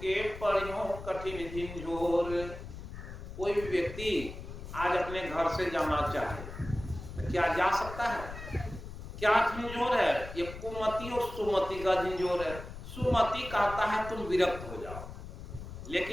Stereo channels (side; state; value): left; noise; rumble, 11 dB below the sound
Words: पढ़ियो कठिन झिंझोर। कोई भी व्यक्ति आज अपने घर से जाना चाहे तो क्या जा सकता है? क्या झिंझोर है? ये कुमति और सुमति का झिंझोर है। सुमति कहता है तुम विरक्त हो जाओ,